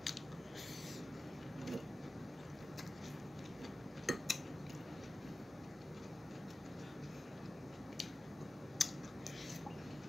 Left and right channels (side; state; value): both; normal; correlation 0.95